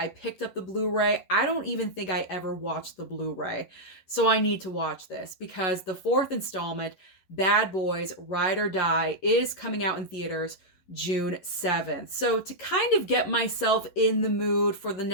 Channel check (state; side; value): late; right; 11 ms